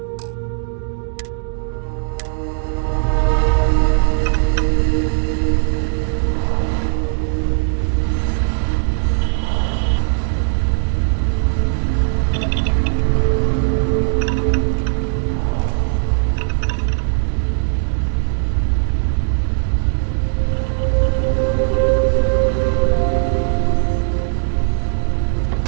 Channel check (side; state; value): left; silent; 66 dB below the other